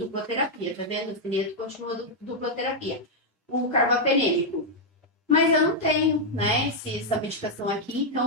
terapia. Tá vendo? O acineto continua dupla terapia. O carbapenêmico. Mas eu não tenho, né, essa medicação aqui,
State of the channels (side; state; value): both; normal; correlation -0.02